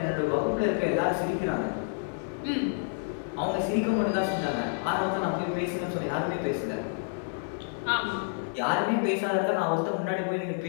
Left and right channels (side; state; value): right; silent; digital silence